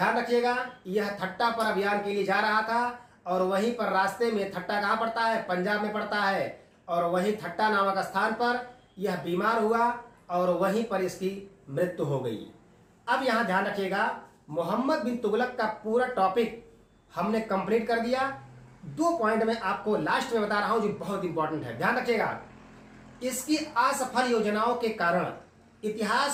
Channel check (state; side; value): identical; both; correlation 1.00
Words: रखिएगा, यह ठट्टा पर अभियान के लिए जा रहा था, और वहीं पर रास्ते में, ठट्टा कहाँ पड़ता है? पंजाब में पड़ता है, और वहीं ठट्टा नामक स्थान पर यह बीमार हुआ और वहीं पर इसकी मृत्यु हो गई। अब यहाँ ध्यान रखिएगा, मोहम्मद बिन तुगलक का पूरा टॉपिक हमने कंप्लीट कर दिया। 2 पॉइंट में आपको लास्ट में बता रहा हूं जो बहुत इंपॉर्टेंट है, ध्यान रखिएगा। इसकी असफल योजनाओं के कारण